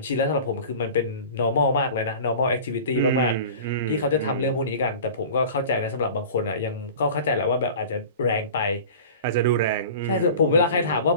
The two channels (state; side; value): inverted; both; correlation -0.38